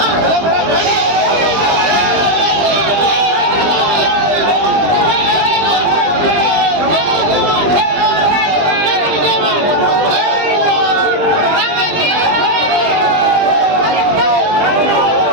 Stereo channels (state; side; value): late; left; 20 ms